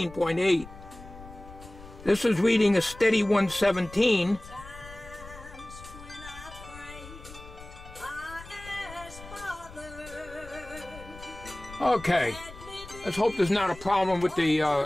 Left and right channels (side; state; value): left; noise; rumble, 17 dB below the sound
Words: This is reading a steady 117. Okay, let's hope there's not a problem with